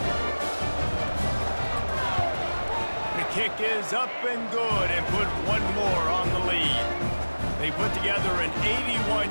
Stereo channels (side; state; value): both; inverted; correlation -1.00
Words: The kick is up and good and put one more on the lead. They put together an